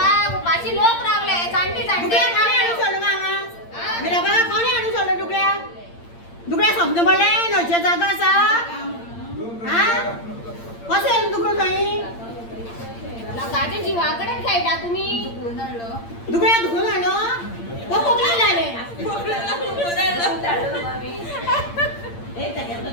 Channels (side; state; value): right; late; 8.7 ms